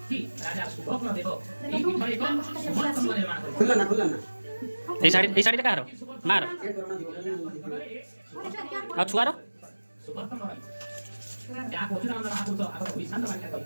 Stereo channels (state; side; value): inverted; both; correlation -1.00